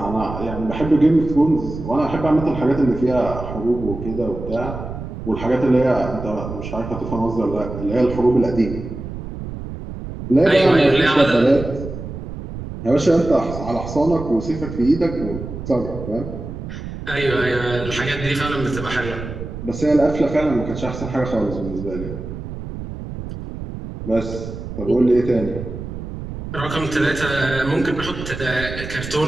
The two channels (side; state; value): right; noise; rumble, 9 dB below the sound